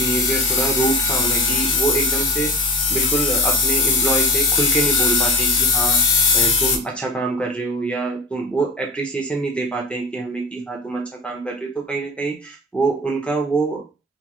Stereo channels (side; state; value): both; normal; correlation 0.34